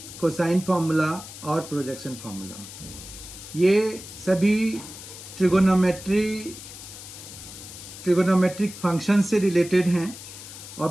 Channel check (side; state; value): left; noise; hiss, 14 dB below the sound